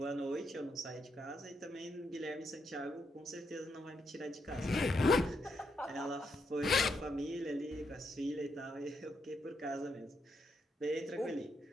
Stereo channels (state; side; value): normal; both; correlation 0.79